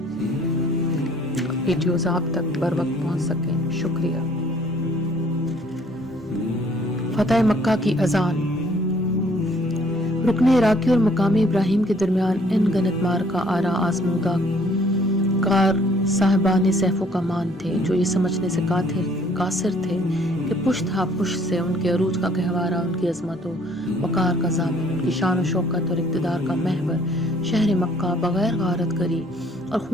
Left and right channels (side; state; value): left; noise; hum, 26 dB below the sound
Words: ویڈیوز آپ تک بر وقت پہنچ سکیں۔ شکریہ۔ فتح مکہ کی اذان۔ رکن عراقی اور مقامی ابراہیم کے درمیان ان گنت مارکا آرا آزمودہ کار صاحبان سیف و کمان تھے، جو یہ سمجھنے سے قاصر تھے کہ پشت ہا پشت سے ان کے عروج کا گہوارہ، ان کی عظمت و وقار کا ضامن، ان کی شان و شوکت اور اقتدار کا محور شہر مکہ بغیر غارت کری اور